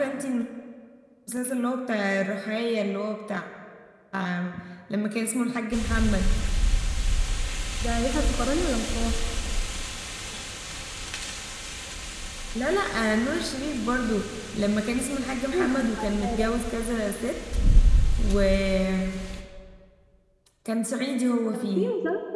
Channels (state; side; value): identical; both; correlation 1.00